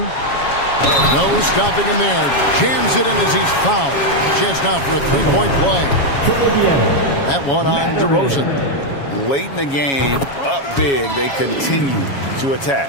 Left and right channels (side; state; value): right; late; 7.2 ms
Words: No stopping him there. Jams it in as he's fouled. Chance now for a three-point play. That one on DeRozan. Late in the game, up big, they continue to